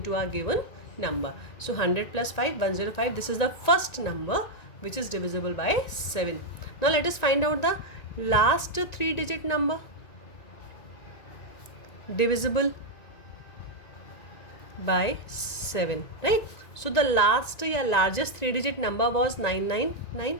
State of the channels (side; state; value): right; late; 1.9 ms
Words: our given number. So 100 plus 5, 105. This is the first number which is divisible by 7. Now let us find out the last 3-digit number divisible by 7, right? So the last or largest 3-digit number was 999.